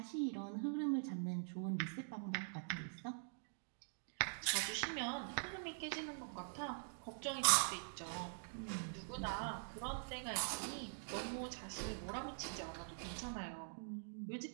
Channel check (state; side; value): silent; left; digital silence